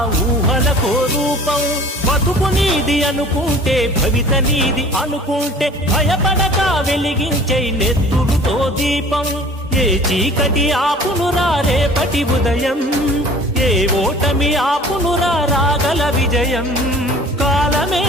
ఊహలకో రూపం. బతుకు నీది అనుకుంటే భవిత నీది అనుకుంటే భయపడక వెలిగించే నెత్తురుతో దీపం. ఏ చీకటి ఆపునురా రేపటి ఉదయం, ఏ ఓటమి ఆపునురా రాగల విజయం. కాలమే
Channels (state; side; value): normal; both; correlation 0.47